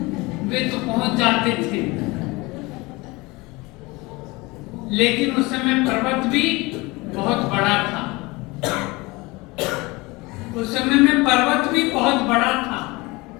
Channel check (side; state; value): right; quieter; 23.6 dB